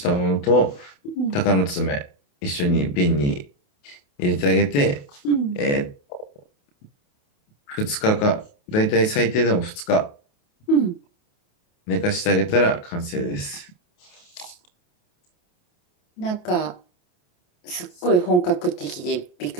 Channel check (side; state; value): right; late; 28 ms